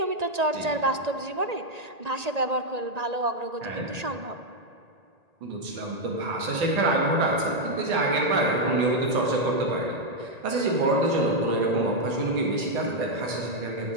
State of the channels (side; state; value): left; late; 1.8 ms